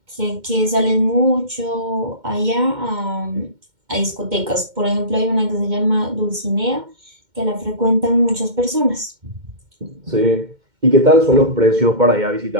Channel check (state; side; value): late; left; 2.1 ms